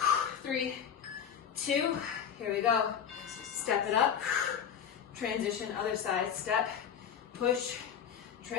3, 2. Here we go. Step it up. Transition, other side. Step. Push.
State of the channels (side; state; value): right; quieter; 8.2 dB